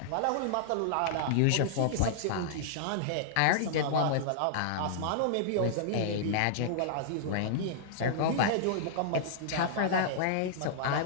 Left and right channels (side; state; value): both; different; correlation -0.02